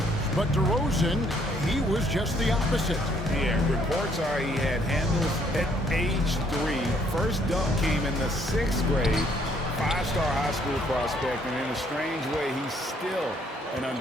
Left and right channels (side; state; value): both; normal; correlation 0.66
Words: but DeRozan, he was just the opposite. Yeah, reports are he had handles at age 3. First dunk came in the 6th grade. 5-star high school prospect, and in a strange way, he's still an